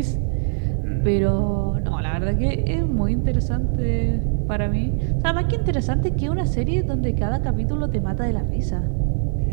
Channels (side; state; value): left; silent; 64 dB below the other